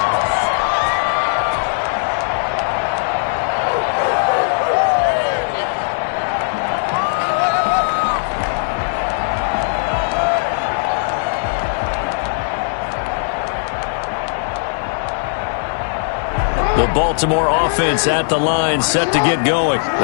The Baltimore offense at the line, set to get going.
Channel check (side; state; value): right; silent; digital silence